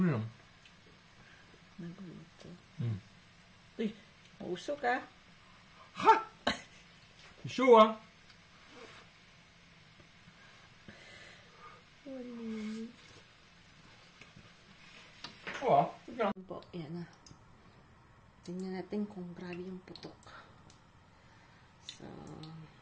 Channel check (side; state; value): both; identical; correlation 1.00